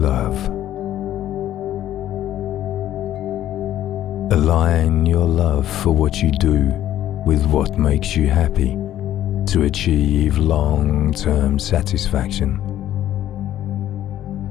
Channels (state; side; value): quieter; right; 12.4 dB